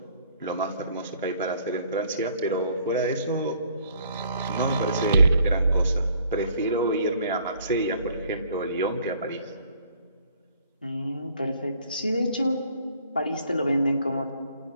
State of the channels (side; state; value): both; inverted; correlation -0.60